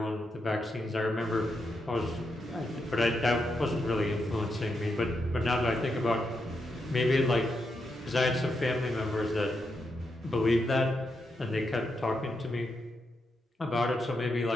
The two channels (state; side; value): normal; both; correlation 0.83